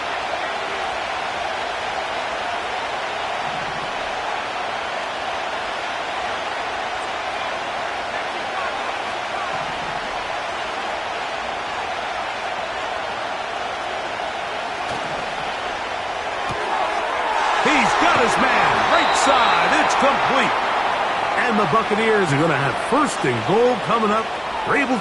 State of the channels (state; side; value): identical; both; correlation 1.00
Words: his man, right side. It's complete. And the Buccaneers are going to have first and goal coming up. They're able